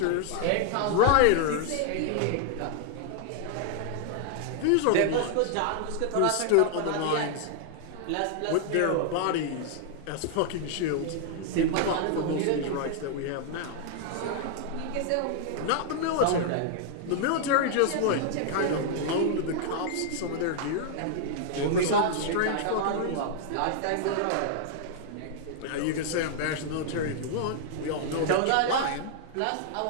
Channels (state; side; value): different; both; correlation 0.00